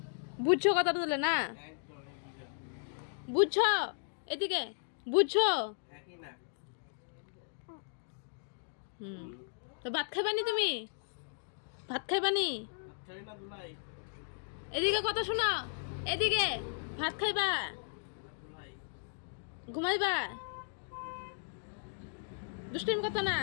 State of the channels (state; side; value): silent; right; digital silence